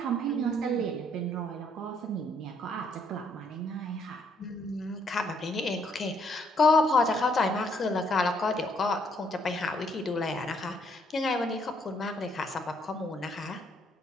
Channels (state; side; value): normal; both; correlation 0.69